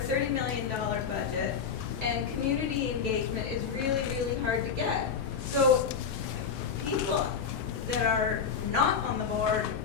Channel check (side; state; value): right; quieter; 6.3 dB